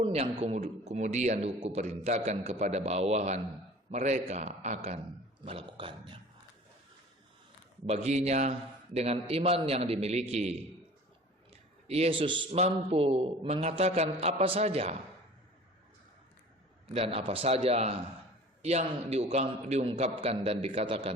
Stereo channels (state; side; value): normal; both; correlation 0.44